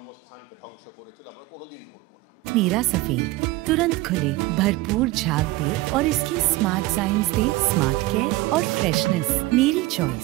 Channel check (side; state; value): left; quieter; 19.2 dB